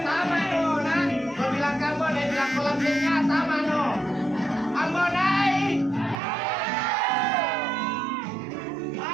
sama no, nah. Kau bilang ke Ambonai, bilang ke lampenya, sama no. Ambonai.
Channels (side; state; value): left; drops out; at 6.2 s